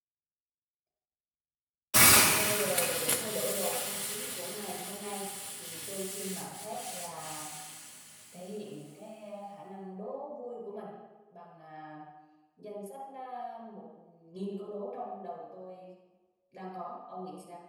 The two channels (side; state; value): both; identical; correlation 1.00